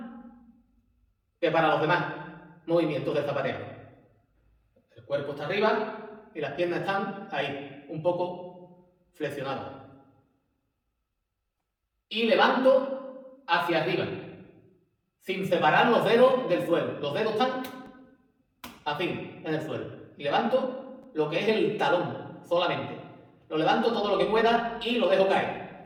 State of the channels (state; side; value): identical; both; correlation 1.00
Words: que para los demás movimientos de zapateo. El cuerpo está arriba y las piernas están ahí, un poco flexionadas. Y levanto hacia arriba, sin separar los dedos del suelo. Los dedos están así, en el suelo. Y levanto lo que es el talón, solamente. Lo levanto todo lo que pueda y lo dejo caer.